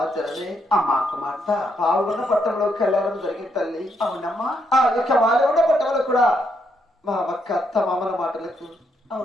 తల్లి అమ్మా కుమార్తె పాల్గొన్న పట్టణంలోకి వెళ్ళడం జరిగింది తల్లి. అవునమ్మా. ఆ యొక్క వాళ్ళు ఉన్న పట్టణంలో కూడా మా అక్క అత్త మామల మాటలకు,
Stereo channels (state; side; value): normal; both; correlation 0.76